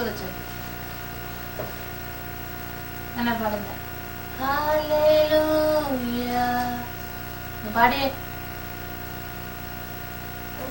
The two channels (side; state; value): both; identical; correlation 1.00